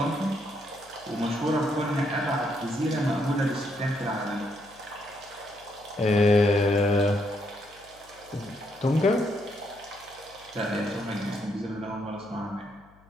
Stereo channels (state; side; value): noise; left; hum, 28 dB below the sound